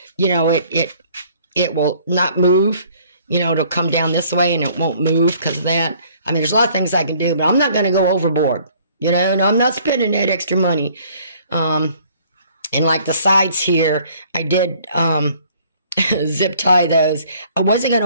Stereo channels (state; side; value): inverted; both; correlation -0.58